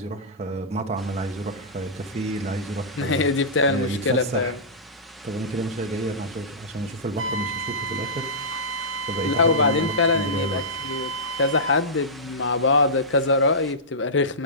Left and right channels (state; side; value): normal; both; correlation -0.16